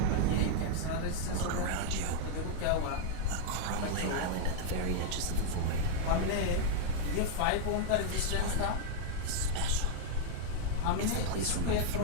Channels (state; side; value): different; both; correlation 0.00